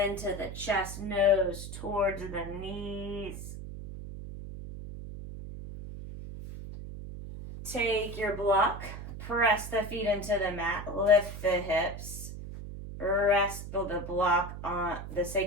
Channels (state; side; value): noise; right; hum, 9 dB below the sound